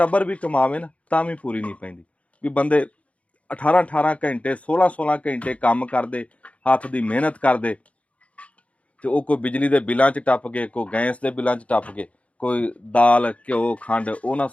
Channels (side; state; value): right; late; 0.064 ms